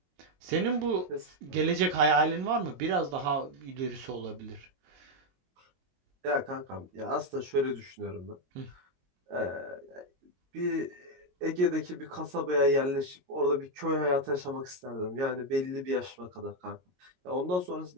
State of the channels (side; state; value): left; late; 22 ms